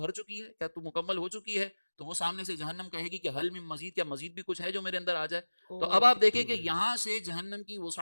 چکی ہے، کیا تو مکمل ہو چکی ہے؟ تو وہ سامنے سے جہنم کہے گی کہ حل من مزید، کیا مزید بھی کچھ ہے جو میرے اندر آ جائے؟ تو اب آپ دیکھیں کہ یہاں سے جہنم کی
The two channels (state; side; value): inverted; both; correlation -1.00